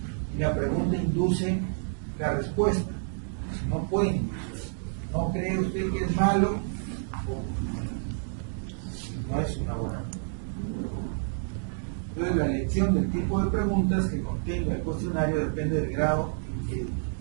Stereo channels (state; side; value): silent; left; digital silence